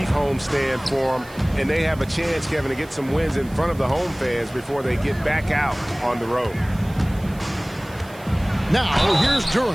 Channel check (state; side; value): noise; right; hiss, 23 dB below the sound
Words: homestand for them, and they have a chance, Kevin, to get some wins in front of the home fans before they get back out on the road. Now, here's